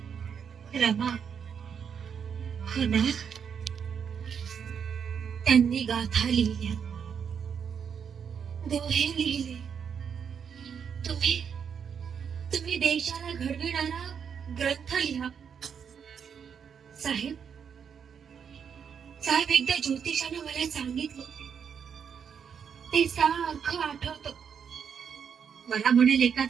रमा होणार. त्यांनी गाथा लिहिल्या, दोहे लिहिले. तुम्ही तुम्ही देशाला घडविणारा ग्रंथ लिहा. साहेब साहेब एकदा ज्योतिषाने मला सांगितलं, ते सारखं आठवतं. मला म्हणेल,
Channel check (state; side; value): quieter; left; 7.2 dB